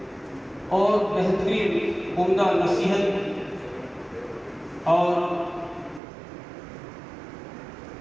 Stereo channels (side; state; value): left; drops out; at 6.0 s